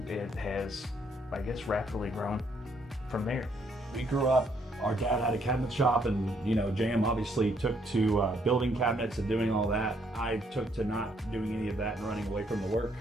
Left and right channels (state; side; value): normal; both; correlation 0.70